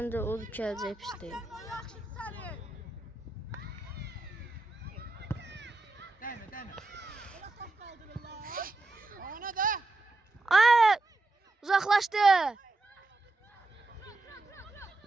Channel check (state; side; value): quieter; left; 3.0 dB